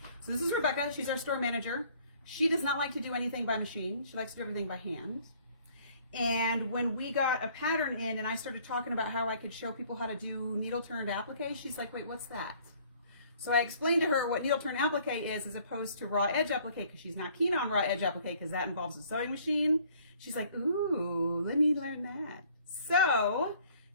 So this is Rebecca. She's our store manager. She does not like to do anything by machine. She likes to do everything by hand. And when we got a pattern in and I started talking about how I could show people how to do needle turned applique, she's like, wait, what's that? So I explained to her what needle turned applique is as opposed to raw edge applique, because she's not keen on raw edge applique because that involves a sewing machine. She's like, ooh, let me learn that. So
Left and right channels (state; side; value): inverted; both; correlation -0.57